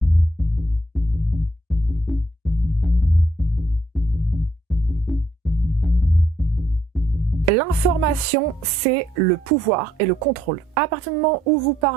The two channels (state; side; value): normal; both; correlation 0.70